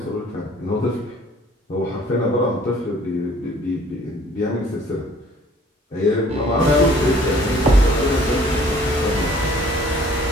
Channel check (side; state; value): both; normal; correlation 0.56